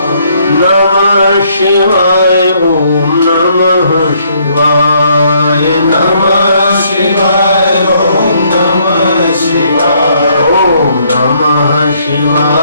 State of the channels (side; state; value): both; inverted; correlation -0.68